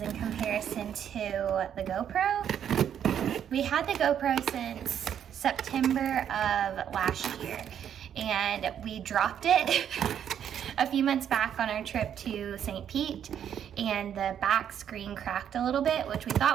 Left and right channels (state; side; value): quieter; left; 9.2 dB